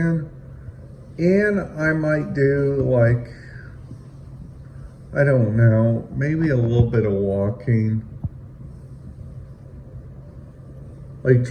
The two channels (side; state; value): both; identical; correlation 1.00